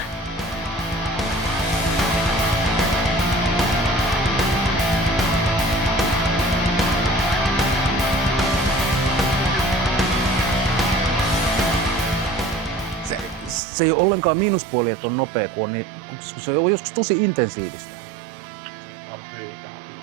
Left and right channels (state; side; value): drops out; left; at 13.6 s